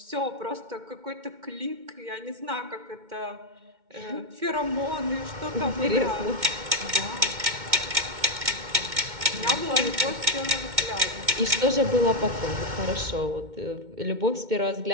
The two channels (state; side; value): late; left; 2.2 ms